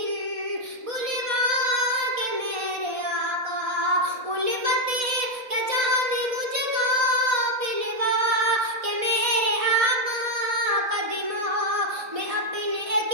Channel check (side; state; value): left; late; 4.1 ms